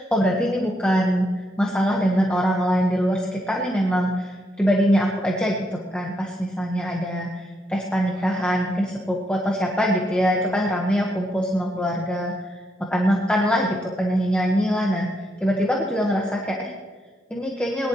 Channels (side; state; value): both; normal; correlation 0.78